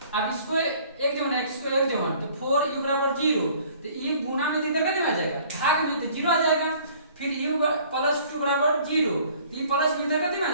अब इसको एक जमा x को एक जमा तो 4u बराबर 0, तो u गुना में तो इधर कितने आ जाएगा, भाग में तो 0 आ जाएगा। फिर u प्लस 2 बराबर 0, तो ये प्लस में इधर कितने में आ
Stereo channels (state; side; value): inverted; both; correlation -0.54